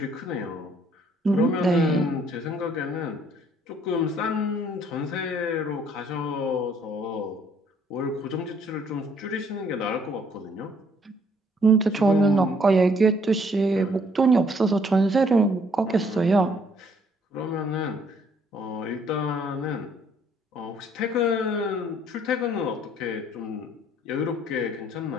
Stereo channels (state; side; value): normal; both; correlation 0.64